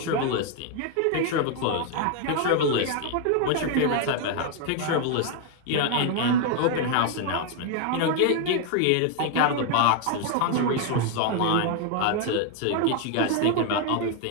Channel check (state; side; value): different; both; correlation 0.01